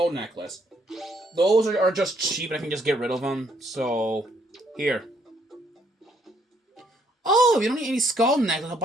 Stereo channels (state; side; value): normal; both; correlation 0.69